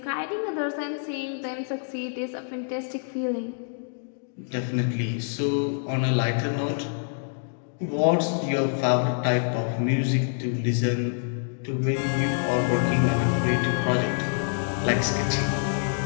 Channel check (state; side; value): silent; right; digital silence